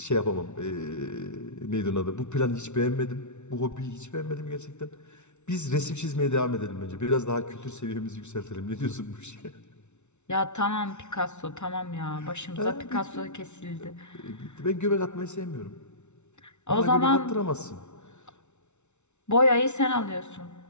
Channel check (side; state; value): right; late; 0.82 ms